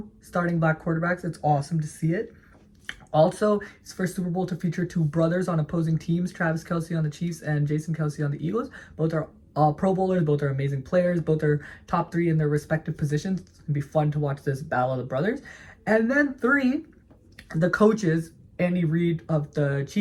starting black quarterbacks. It's awesome to see it. Also, it's the first Super Bowl to feature 2 brothers on opposing teams, Travis Kelce on the Chiefs and Jason Kelce on the Eagles. Both are Pro Bowlers, both are amazing players, both are top 3 in their respective positions. It's going to be fun to watch this battle of the brothers. And then 3, the coaches, Andy Reid of the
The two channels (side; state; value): both; identical; correlation 1.00